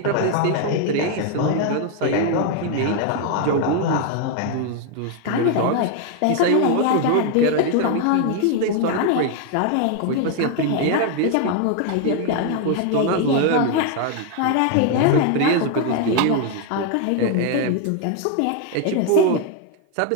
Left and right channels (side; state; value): both; different; correlation 0.00